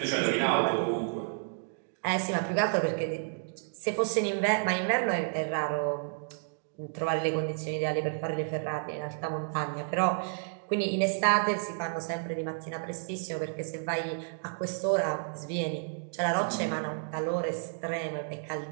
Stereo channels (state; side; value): silent; left; digital silence